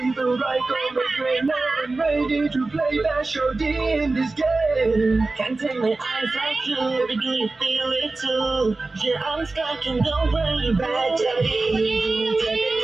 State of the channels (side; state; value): left; quieter; 3.4 dB